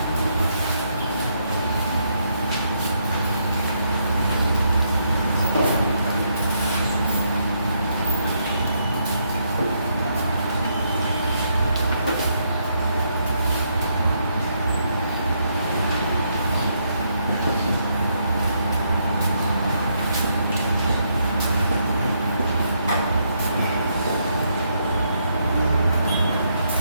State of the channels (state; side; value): inverted; both; correlation -0.76